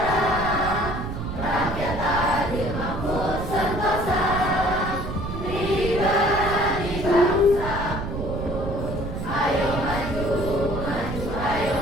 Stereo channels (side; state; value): right; noise; rumble, 6 dB below the sound